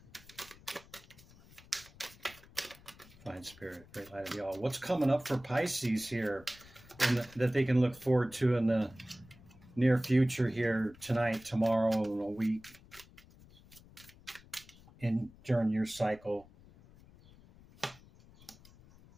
Fine Spirit, great light of y'all. What's coming up for Pisces here that they can look forward to in the near future here, tonight, tomorrow, in a week, during your cycle?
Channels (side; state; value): left; noise; rumble, 23 dB below the sound